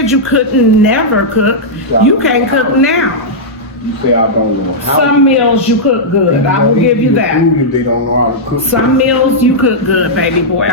you couldn't never cook. You can't cook now. You say I don't know how. Some meals you cook good. I will give you that. They don't know how to cook. Some meals you cook good, baby boy.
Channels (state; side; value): normal; both; correlation -0.09